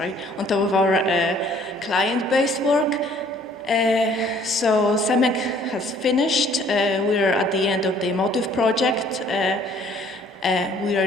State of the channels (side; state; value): both; normal; correlation 0.58